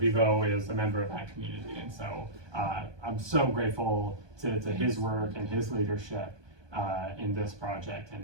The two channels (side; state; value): left; late; 1.2 ms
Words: is a member of that community, and so I'm so grateful to his work and his leadership in this project,